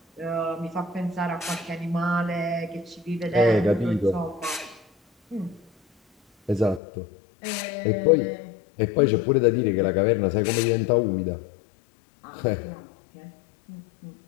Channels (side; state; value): right; drops out; at 6.8 s